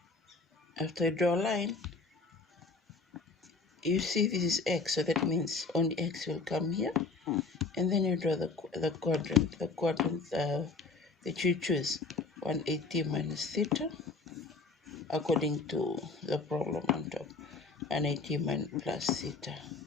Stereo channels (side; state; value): right; quieter; 4.0 dB